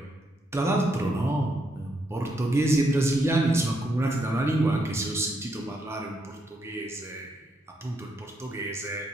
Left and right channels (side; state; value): both; normal; correlation 0.77